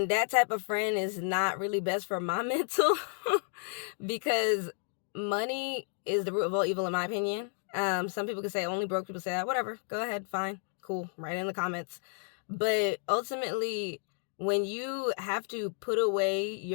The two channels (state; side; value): silent; right; 57 dB below the other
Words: that type of friend is not really best for my mental because money is the root of all evil, in my opinion. Some people could say only broke people say that. Whatever. Go ahead. Fine. Cool. Write it in the comments. But ultimately, when you have to put away